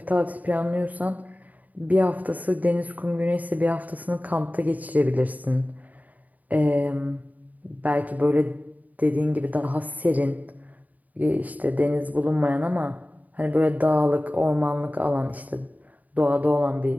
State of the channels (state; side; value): late; left; 0.076 ms